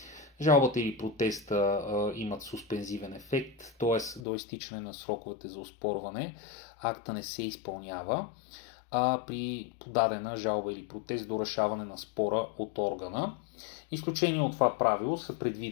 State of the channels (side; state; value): right; drops out; at 4.2 s